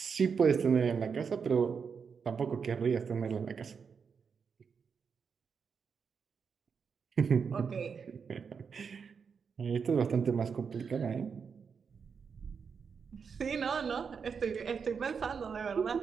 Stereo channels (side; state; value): left; quieter; 6.1 dB